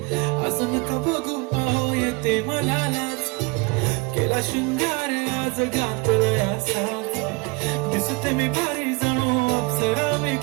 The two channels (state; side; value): quieter; left; 27.8 dB